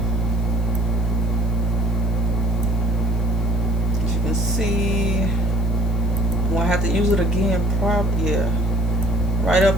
As you can see, I'm gonna have to use it again, probably, yeah. Right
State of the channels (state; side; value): noise; left; hiss, 26 dB below the sound